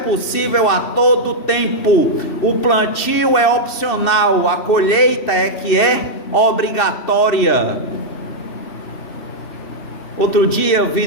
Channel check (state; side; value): late; right; 2.7 ms